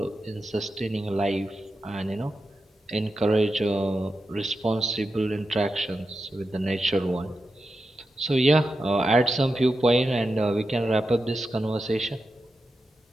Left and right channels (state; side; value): normal; both; correlation 0.89